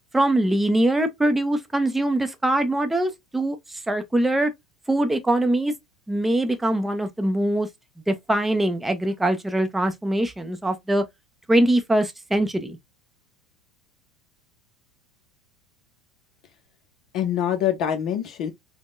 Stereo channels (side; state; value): both; normal; correlation 0.86